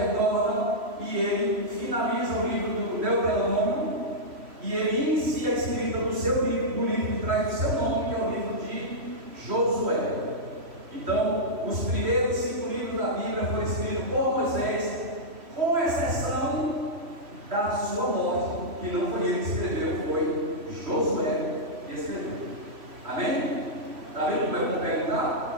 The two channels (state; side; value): late; left; 3.1 ms